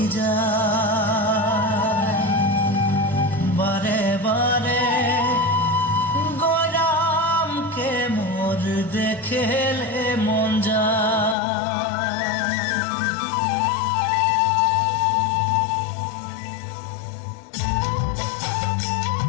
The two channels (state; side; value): drops out; right; at 11.4 s